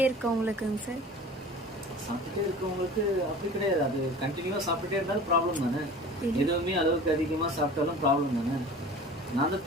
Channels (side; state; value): both; normal; correlation 0.40